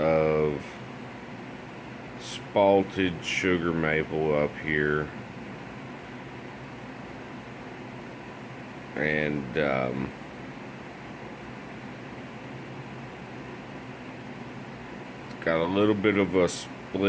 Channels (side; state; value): both; identical; correlation 1.00